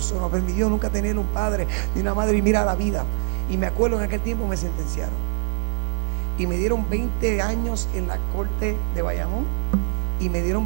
No permitió nunca tener un padre ni una madre, y mira la vida. Y me acuerdo en aquel tiempo me sentenciaron y me dieron 20 años en la corte de Bayamón y me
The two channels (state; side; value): silent; left; digital silence